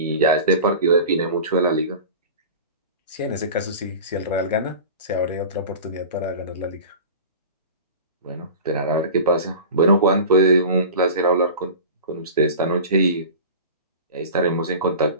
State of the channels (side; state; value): both; inverted; correlation -0.35